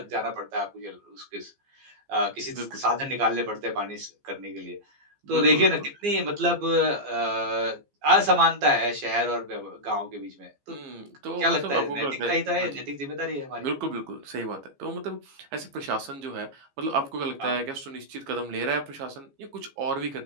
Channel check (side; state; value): left; late; 15 ms